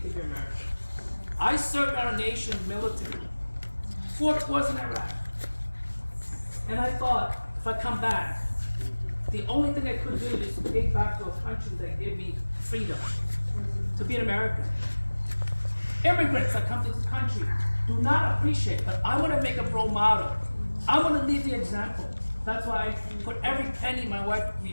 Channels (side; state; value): both; inverted; correlation -1.00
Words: be American. I served our nation's military, 4 tours in Iraq. And I thought, if I come back, the only thing I could do is to take back to a country that gave me freedom, to be an American. Immigrants that come to this country do not appreciate, but I want to make a role model. I want to lead the example. That's why I put every penny my wife